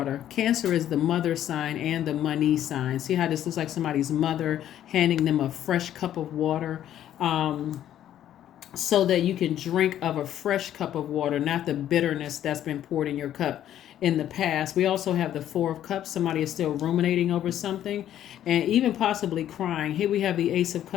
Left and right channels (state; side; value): quieter; right; 11.4 dB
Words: Cancer is the mother sign and the money sign. See how this looks like somebody's mother handing them a fresh cup of water. So that you can drink of a fresh cup of water, not the bitterness that's been poured in your cup in the past. We also have the Four of Cups. Somebody is still ruminating over something and even possibly crying. Here we have the Ace of